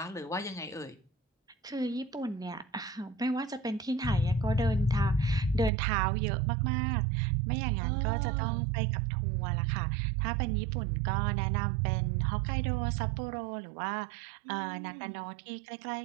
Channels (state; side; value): drops out; left; at 5.7 s